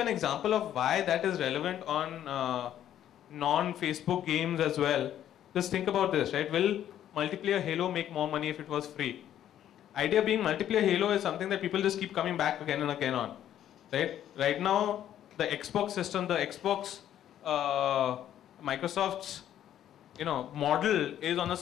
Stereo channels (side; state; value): right; quieter; 11.1 dB